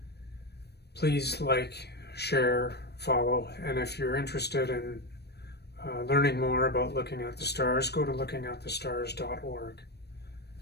Please like, share, follow, and if you're interested in learning more about Looking at the Stars, go to lookingatthestars.org.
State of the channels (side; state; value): right; late; 0.48 ms